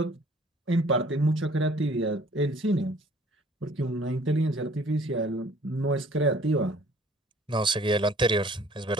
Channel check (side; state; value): both; normal; correlation 0.55